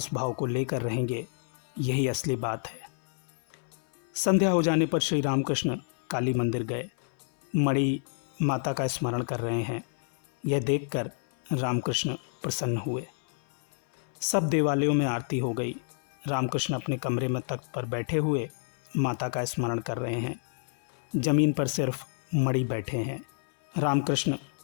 भाव को लेकर रहेंगे, यही असली बात है। संध्या हो जाने पर श्री रामकृष्ण काली मंदिर गए। मणि माता का स्मरण कर रहे हैं। यह देखकर रामकृष्ण प्रसन्न हुए। सब देवालयों में आरती हो गई। रामकृष्ण अपने कमरे में तख्त पर बैठे हुए माता का स्मरण कर रहे हैं। जमीन पर सिर्फ मणि बैठे हैं। रामकृष्ण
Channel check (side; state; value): right; silent; 59 dB below the other